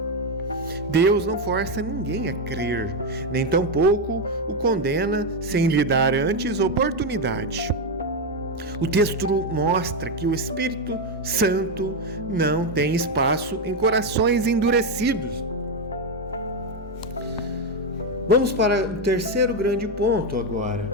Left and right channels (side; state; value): both; normal; correlation 0.07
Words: Deus não força ninguém a crer, nem tampouco o condena sem lhe dar antes oportunidade. O texto mostra que o Espírito Santo não tem espaço em corações endurecidos. Vamos para o terceiro grande ponto agora,